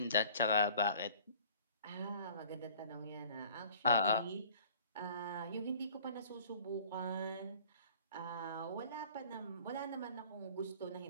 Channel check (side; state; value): both; inverted; correlation -0.51